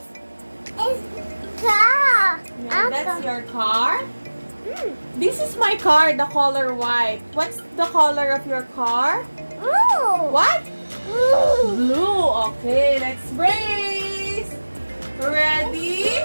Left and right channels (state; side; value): inverted; both; correlation -1.00